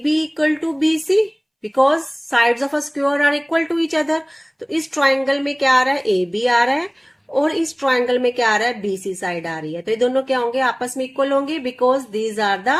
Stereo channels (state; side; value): identical; both; correlation 1.00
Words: equal to BC, because sides of a square are equal to each other. तो इस ट्राइंगल में क्या आ रहा है, AB आ रहा है, और इस ट्राइंगल में क्या आ रहा है, BC साइड आ रही है। तो ये दोनों क्या होंगे, आपस में इक्वल होंगे, because these are